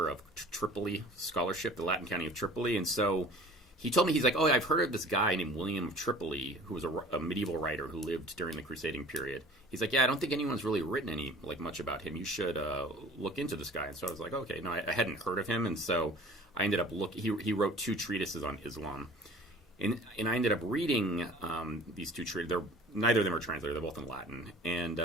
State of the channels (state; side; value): normal; both; correlation 0.46